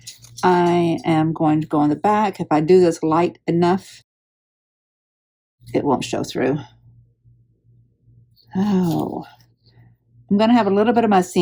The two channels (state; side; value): identical; both; correlation 1.00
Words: I am going to go on the back. If I do this light enough, it won't show through. Oh, I'm going to have a little bit of my